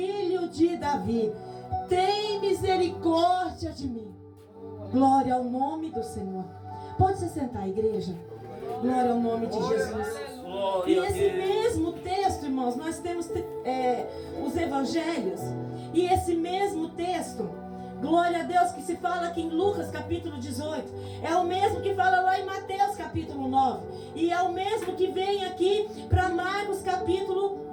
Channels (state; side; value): identical; both; correlation 1.00